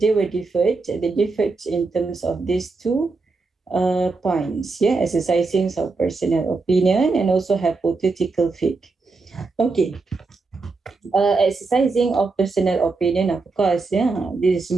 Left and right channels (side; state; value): left; quieter; 3.9 dB